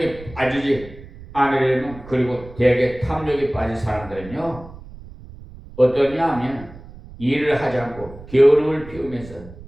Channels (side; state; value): right; noise; rumble, 17 dB below the sound